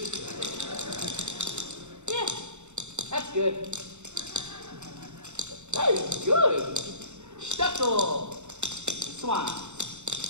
Yeah, that's good. That is good. Stuckle. Swan.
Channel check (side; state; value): left; late; 0.83 ms